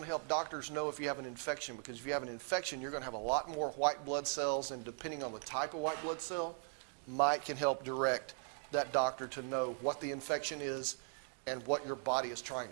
to help doctors know if you have an infection, because if you have an infection, you're going to have a lot more white blood cells, and depending on the type of white blood cell, can help direct that doctor to know what the infection is and what your body is trying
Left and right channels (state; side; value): silent; left; 52 dB below the other